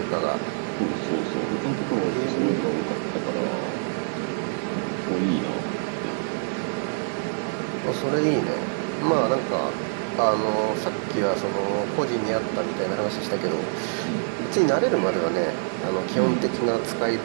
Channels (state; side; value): silent; left; 61 dB below the other